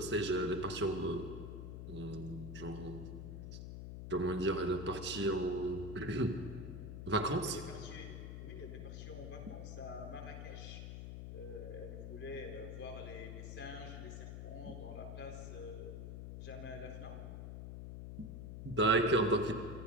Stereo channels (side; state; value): left; noise; hum, 7 dB below the sound